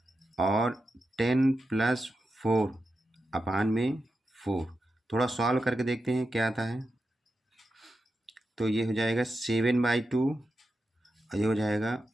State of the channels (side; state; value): both; normal; correlation 0.89